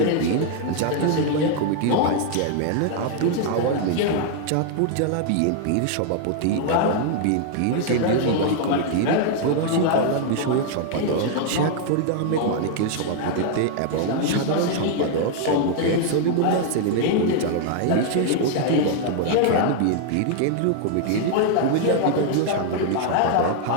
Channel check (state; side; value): different; both; correlation 0.00